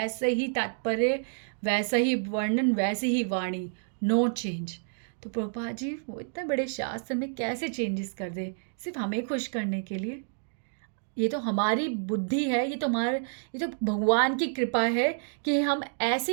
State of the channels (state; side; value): silent; left; digital silence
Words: ही तात्पर्य, वैसा ही वर्णन, वैसी ही वाणी, नो चेंज। तो प्रभुपाद जी वो इतने बड़े शास्त्र में कैसे चेंजेस कर दे सिर्फ हमें खुश करने के लिए? ये तो हमारी बुद्धि है, ये तो भगवान की कृपा है कि हम